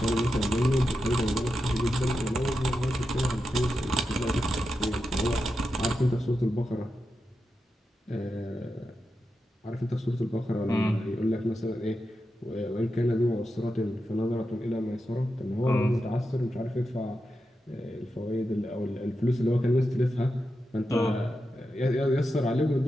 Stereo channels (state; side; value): normal; both; correlation 0.89